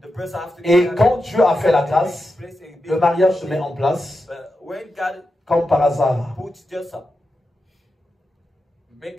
Et quand Dieu a fait la grâce, le mariage se met en place comme par hasard.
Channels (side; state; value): both; normal; correlation 0.89